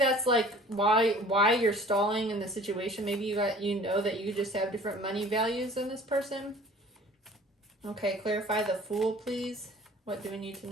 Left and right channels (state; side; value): normal; both; correlation 0.48